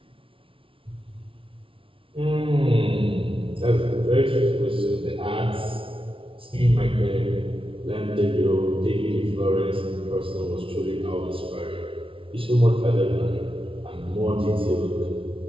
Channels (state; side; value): late; left; 0.25 ms